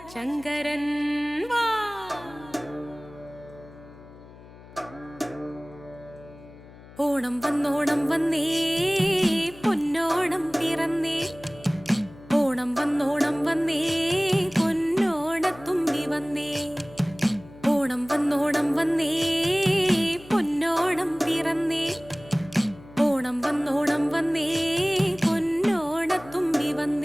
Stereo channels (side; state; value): left; noise; hum, 20 dB below the sound